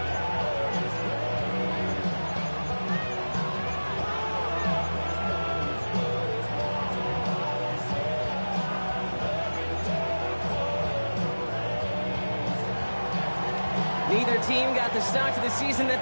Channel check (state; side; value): inverted; both; correlation -1.00